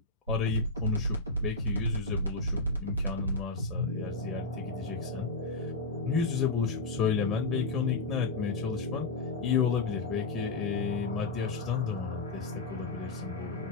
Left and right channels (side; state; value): right; quieter; 3.6 dB